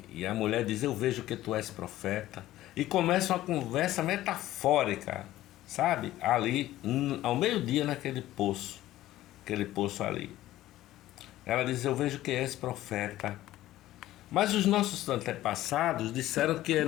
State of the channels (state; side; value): quieter; right; 14.9 dB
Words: a mulher diz: eu vejo que tu és profeta. E começa uma conversa metafórica, sabe? Ali, ao meio-dia, naquele poço, aquele poço ali. Ela diz: eu vejo que és profeta. Mas os nossos antepassados disseram que é